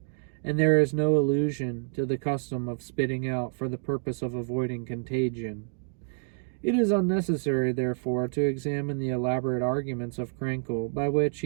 And there is no allusion to the custom of spitting out for the purpose of avoiding contagion. It is unnecessary, therefore, to examine the elaborate arguments of Krenkel, by which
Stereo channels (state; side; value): silent; left; digital silence